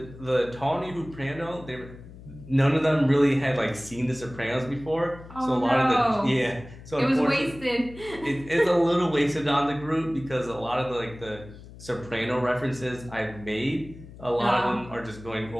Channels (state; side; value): noise; left; hum, 17 dB below the sound